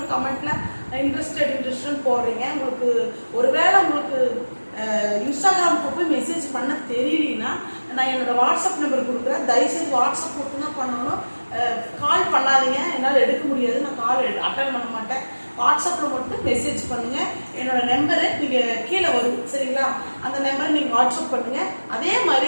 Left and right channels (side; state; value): both; inverted; correlation -1.00